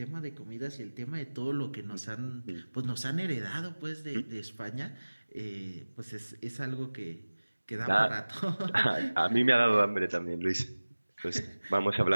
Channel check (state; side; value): inverted; both; correlation -1.00